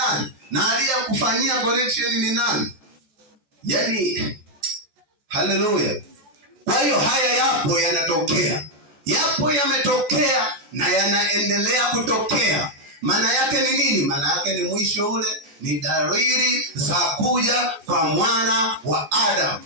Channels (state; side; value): late; left; 14 ms